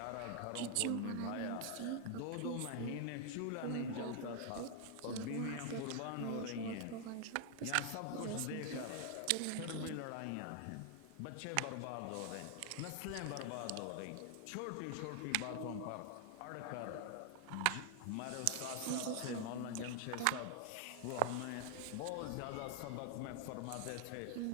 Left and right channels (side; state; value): both; different; correlation 0.00